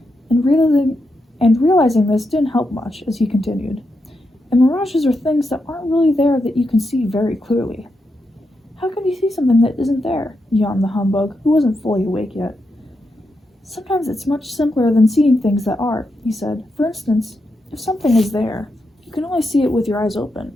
and realizing this didn't help much as he continued. And mirages are things that aren't really there that you can see very clearly. How can you see something that isn't there? Yawned the humbug, who wasn't fully awake yet. Sometimes it's much simpler than seeing things that are, he said. For instance, if something is there, you can only see it with your eyes open,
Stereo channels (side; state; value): both; normal; correlation 0.85